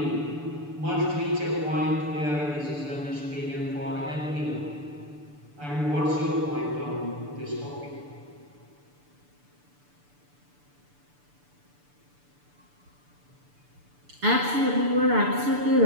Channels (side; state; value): left; late; 6.9 ms